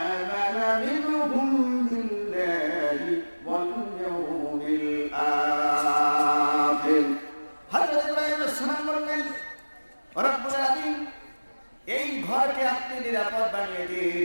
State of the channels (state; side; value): inverted; both; correlation -1.00